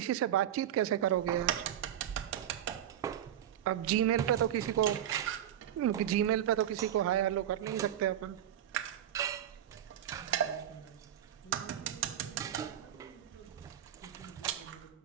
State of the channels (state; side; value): quieter; left; 11.0 dB